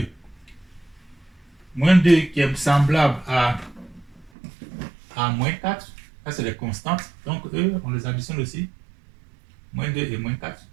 Moins 2 qui est semblable à moins 4. Ça, c'est les constantes. Donc, eux, on les additionne aussi. Moins 2 et moins 4.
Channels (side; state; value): left; drops out; at 4.3 s